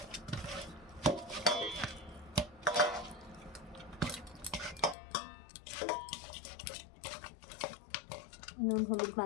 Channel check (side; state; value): right; drops out; at 5.0 s